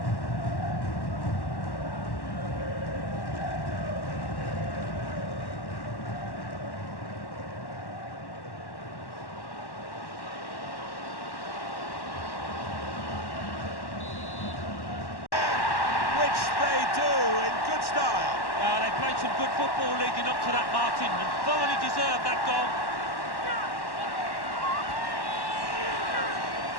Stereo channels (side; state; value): right; late; 1.1 ms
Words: They played some good football leading up to that, Martin, and thoroughly deserved that goal.